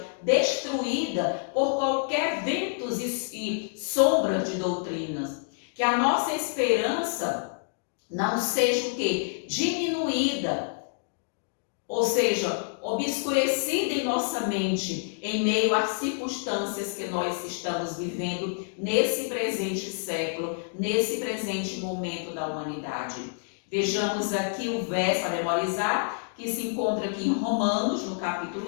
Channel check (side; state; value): right; silent; digital silence